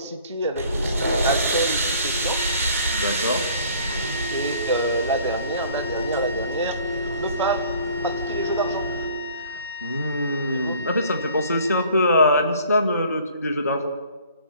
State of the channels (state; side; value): inverted; both; correlation -0.54